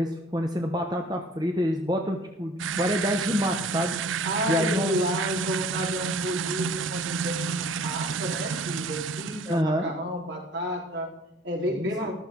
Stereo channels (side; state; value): both; normal; correlation 0.51